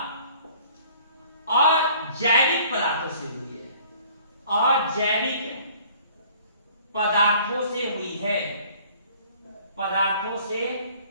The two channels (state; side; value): inverted; both; correlation -0.54